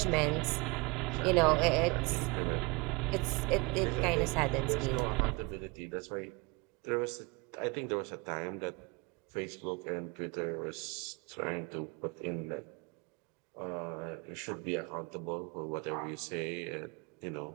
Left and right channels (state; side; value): quieter; left; 26.9 dB